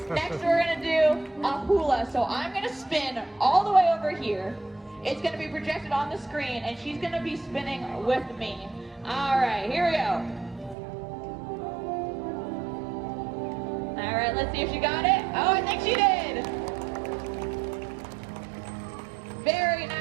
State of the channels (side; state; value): left; drops out; at 10.8 s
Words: Next, we're gonna do a hula. So I'm gonna spin all the way over here. It's gonna be projected on the screen and she's gonna be spinning with me. All right, here we go. All right, let's see if she got it. Oh, I think she did. Very